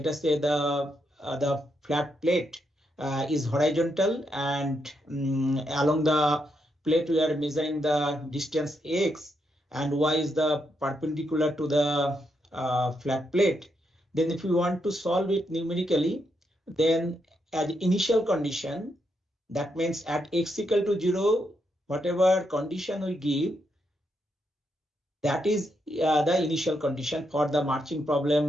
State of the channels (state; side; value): normal; both; correlation 0.80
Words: us say the flat plate is horizontal, and along the plate we are measuring the distance x, and y is the perpendicular to the flat plate. Then if we want to solve it numerically, then as initial condition, that means at x equal to 0, whatever condition we give, that is the initial condition for the marching